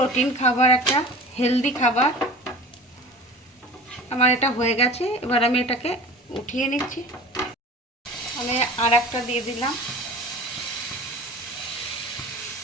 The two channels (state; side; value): normal; both; correlation 0.39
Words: খাবার, একটা হেলদি খাবার। আমার এটা হয়ে গেছে। এবার আমি এটাকে উঠিয়ে নিচ্ছি। আমি আর একটা দিয়ে দিলাম।